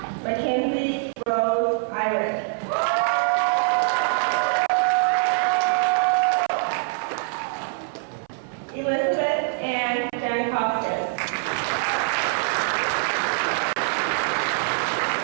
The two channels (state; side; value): silent; left; 60 dB below the other